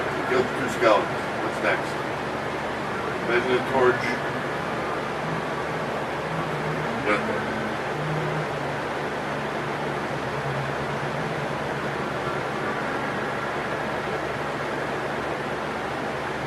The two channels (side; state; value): both; identical; correlation 1.00